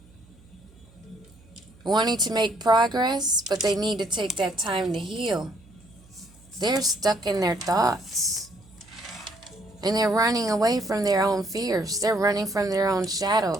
wanting to make progress, but they need to take that time to heal. They're stuck in their thoughts. And they're running away from their own fears. They're running from their own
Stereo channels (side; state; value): right; noise; hum, 26 dB below the sound